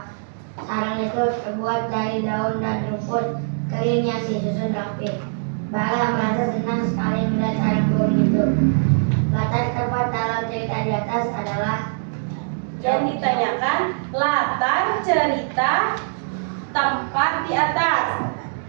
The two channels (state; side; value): silent; left; digital silence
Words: Sarang itu terbuat dari daun dan rumput kering yang disusun rapi. Bara merasa senang sekali melihat sarang burung itu. Latar tempat dalam cerita di atas adalah Yang ditanyakan latar cerita tempat di atas.